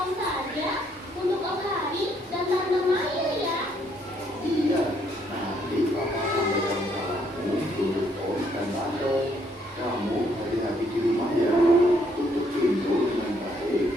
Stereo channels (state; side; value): normal; both; correlation 0.70